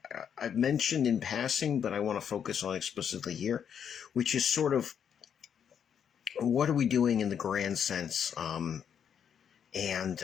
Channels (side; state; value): right; quieter; 8.1 dB